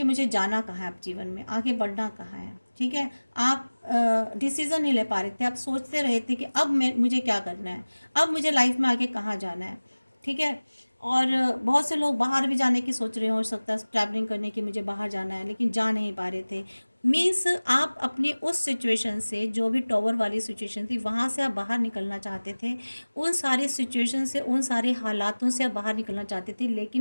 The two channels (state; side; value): inverted; both; correlation -1.00